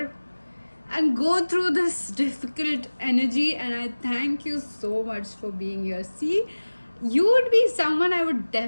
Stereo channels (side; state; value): both; inverted; correlation -1.00